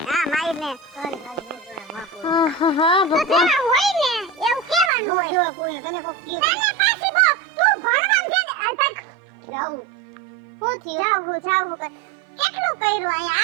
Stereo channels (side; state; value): left; drops out; at 4.9 s